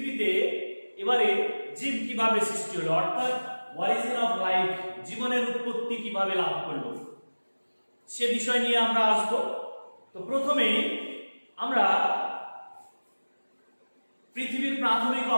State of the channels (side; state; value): both; inverted; correlation -1.00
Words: এবারে জীব কিভাবে সৃষ্টি হলো, অর্থাৎ অরিজিন অফ লাইফ, জীবনের উৎপত্তি কিভাবে লাভ করলো, সে বিষয় নিয়ে আমরা আসব। তো প্রথমেই আমরা পৃথিবীর প্রাথমিক